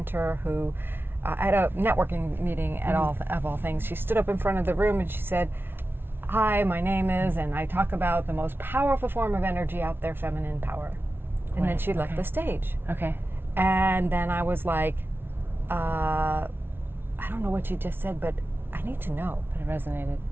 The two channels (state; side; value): late; left; 0.11 ms